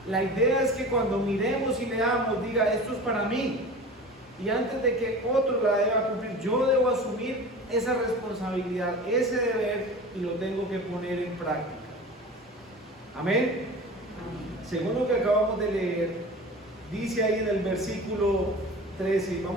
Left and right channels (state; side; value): normal; both; correlation 0.36